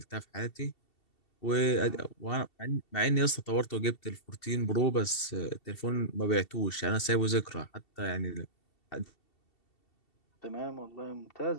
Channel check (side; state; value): right; late; 2.7 ms